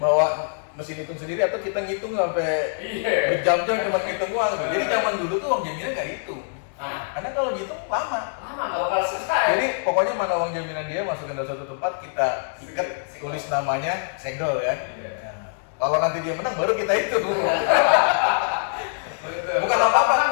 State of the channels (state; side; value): silent; right; digital silence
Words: bahwa mesin hitung sendiri atau kita ngitung sampai berjam-jam cuma ngitung uang tuh. Jadi zaman dulu tuh uang jaminan nggak hitung. Karena kalau dihitung lama nggak bakal selesai. Jadi pokoknya mana uang jaminan dia masukin dalam satu tempat, kita ikat, tulis namanya, segel kan. Kalau nanti dia menang baru kita hitung. Bukan apa-apa,